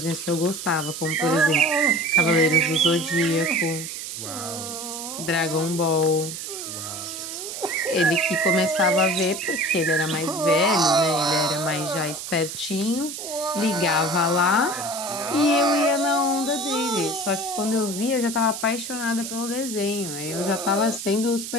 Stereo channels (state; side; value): noise; right; hiss, 8 dB below the sound